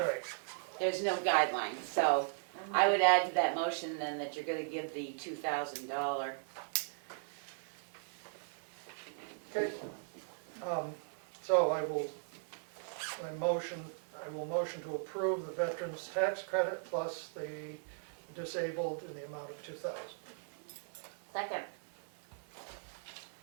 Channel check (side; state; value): left; silent; 52 dB below the other